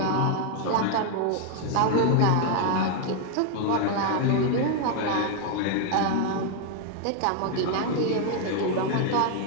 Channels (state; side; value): different; both; correlation 0.00